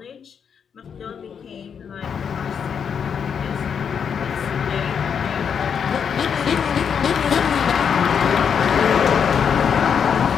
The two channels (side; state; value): right; quieter; 7.1 dB